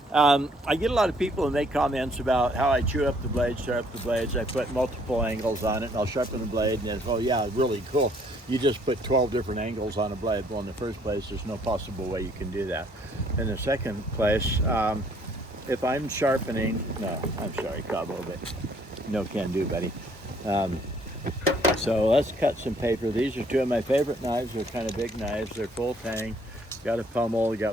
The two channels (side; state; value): both; normal; correlation 0.64